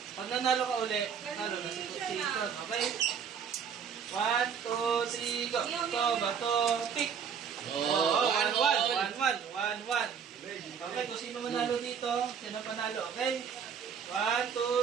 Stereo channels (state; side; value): quieter; left; 7.2 dB